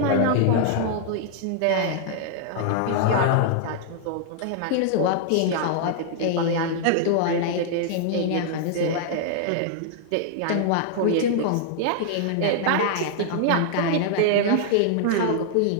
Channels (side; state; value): both; different; correlation -0.01